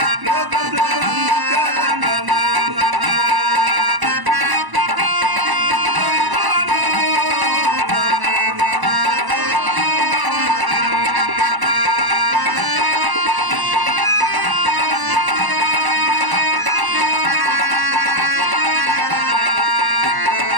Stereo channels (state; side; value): late; left; 1.0 ms